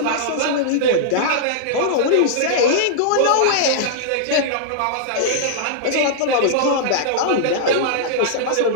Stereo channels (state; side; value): different; both; correlation -0.01